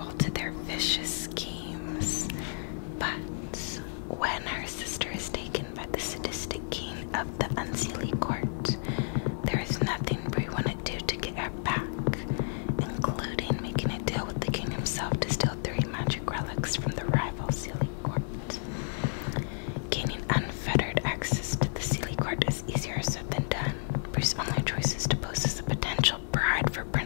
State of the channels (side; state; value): right; silent; digital silence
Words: to their vicious schemes. But when her sister is taken by the sadistic king of the Unseelie Court, there is nothing Bree wouldn't do to get her back, including making a deal with the king himself to steal 3 magic relics from the rival Seelie Court. Gaining unfettered access to the Seelie Court is easier said than done. Bree's only choice is to pose as a potential bride for